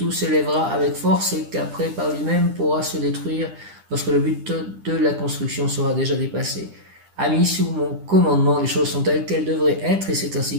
s'élèvera avec force et qu'après par lui-même pourra se détruire lorsque le but de la construction sera déjà dépassé. Ami, sous mon commandement, les choses sont telles qu'elles devraient être et c'est ainsi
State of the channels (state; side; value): late; left; 10 ms